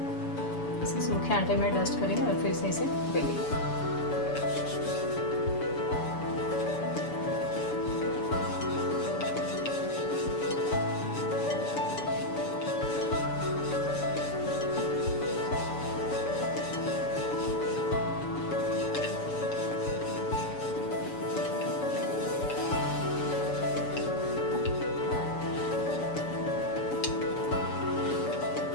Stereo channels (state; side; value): late; right; 7.0 ms